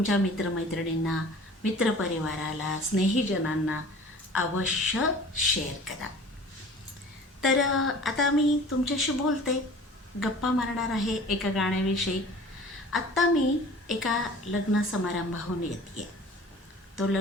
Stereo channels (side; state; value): both; normal; correlation 0.44